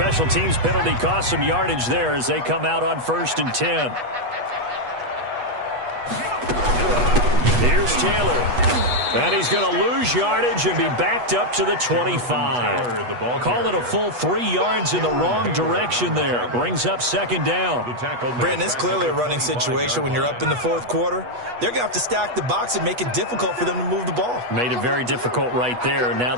teams penalty cost some yardage there as they come out on 1st and 10. Here's Taylor. And he's going to lose yardage and be backed up to the 25. Call it a full 3 yards in the wrong direction there. Brings up 2nd down. Brandon, it's clearly a running situation when you're up in the 4th quarter. They're going to have to stack the box and make it difficult for them to move the ball. Made it very difficult right there. Now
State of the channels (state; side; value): late; left; 8.2 ms